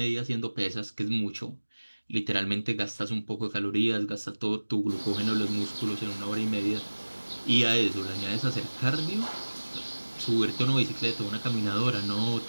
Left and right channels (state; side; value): inverted; both; correlation -1.00